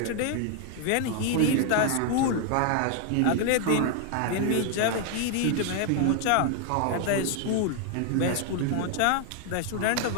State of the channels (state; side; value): different; both; correlation 0.00